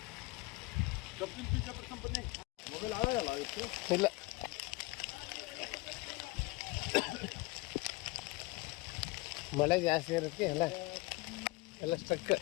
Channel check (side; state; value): right; quieter; 22.2 dB